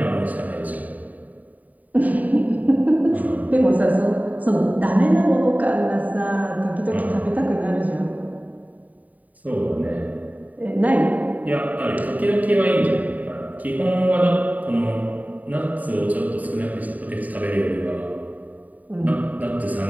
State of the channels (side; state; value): left; late; 0.074 ms